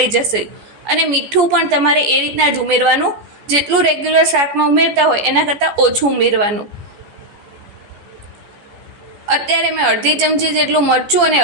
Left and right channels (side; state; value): left; late; 14 ms